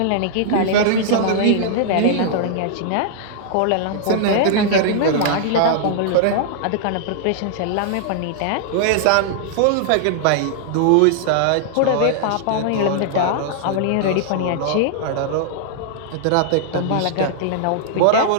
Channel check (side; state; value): both; different; correlation -0.01